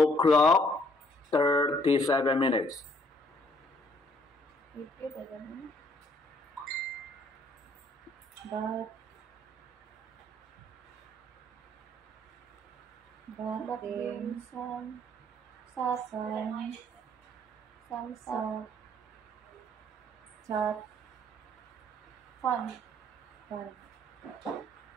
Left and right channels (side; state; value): both; normal; correlation 0.64